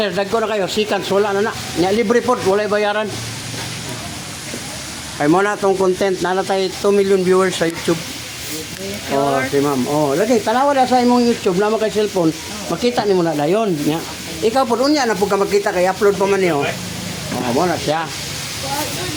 dagko na kayo, seconds, wala na na. Nya libre po, walay bayaran. Kay mo na tong content, na tayo 2 million viewers sa YouTube. Oh, si ma'am. Oh, lagi tanawa na sa imong YouTube na kay cellphone. Makita nimo na dayon nya. Ikaw pud unya na pud ka makita kay upload pa man niyo. Oh, mo na siya.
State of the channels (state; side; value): identical; both; correlation 1.00